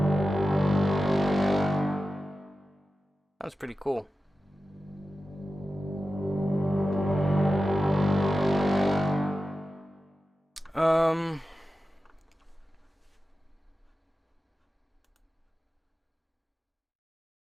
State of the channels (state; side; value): normal; both; correlation 0.93